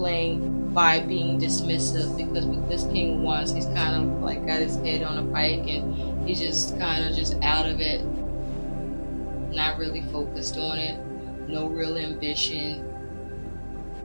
by being dismissive, because with this King of Wands, he's kind of like got his head on a pike and he's just kind of just out of it, not really focused on it, no real ambition,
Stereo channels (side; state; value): both; inverted; correlation -1.00